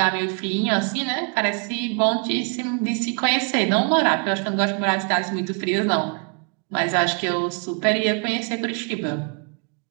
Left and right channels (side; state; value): left; quieter; 39.1 dB